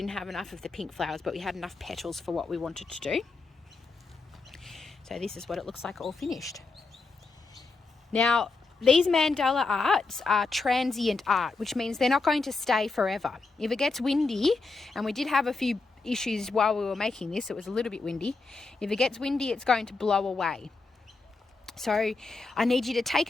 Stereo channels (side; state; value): right; quieter; 3.9 dB